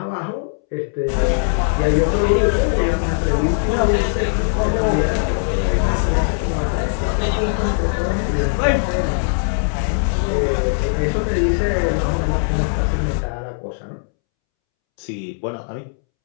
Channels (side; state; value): right; silent; 66 dB below the other